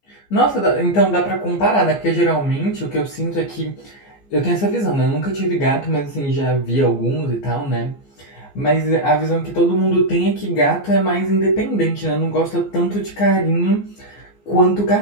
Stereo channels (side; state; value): right; late; 15 ms